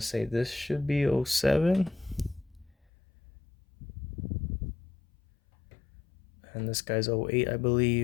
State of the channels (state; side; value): drops out; right; at 2.7 s